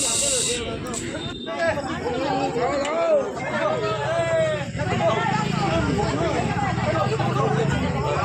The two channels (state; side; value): identical; both; correlation 1.00